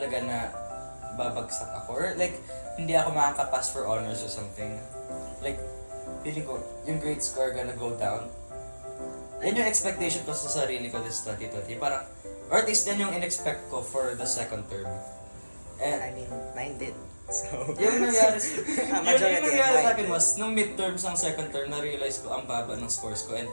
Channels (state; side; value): inverted; both; correlation -1.00